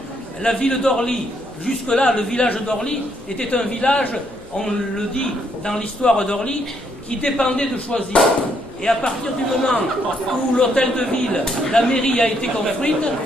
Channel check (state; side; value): noise; left; rumble, 25 dB below the sound